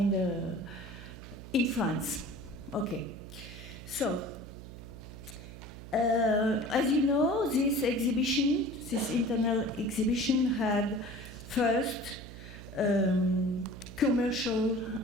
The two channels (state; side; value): noise; right; hum, 14 dB below the sound